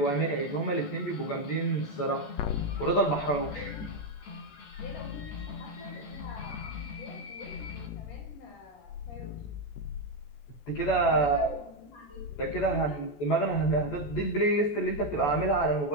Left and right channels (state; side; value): late; right; 14 ms